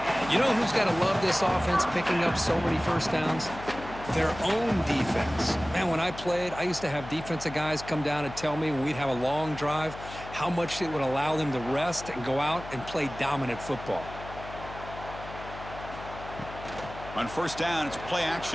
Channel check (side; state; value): left; noise; hum, 13 dB below the sound